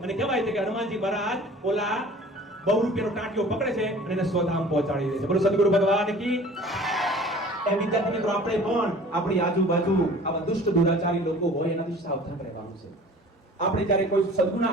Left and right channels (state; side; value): normal; both; correlation 0.46